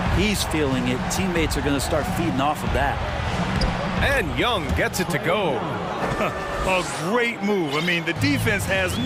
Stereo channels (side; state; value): both; identical; correlation 1.00